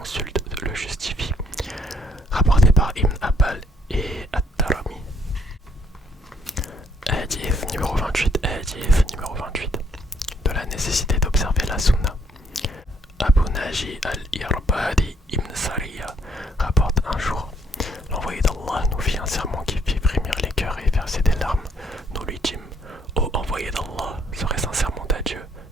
le justifient. Rapporté par Ibn Abbal et At-Tarami. Hadith numéro 28. De la nécessité d'observer la sunna. Abu Naji al-Irbadi ibn Sariya rapporte un jour: l'envoyé d'Allah nous fit un sermon qui fit frémir les cœurs et verser des larmes. Nous lui dîmes: ô envoyé d'Allah, serait-ce un sermon à Dieu?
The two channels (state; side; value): normal; both; correlation 0.68